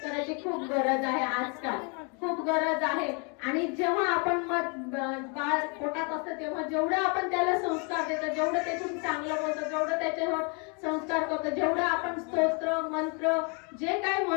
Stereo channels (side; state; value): right; quieter; 35.2 dB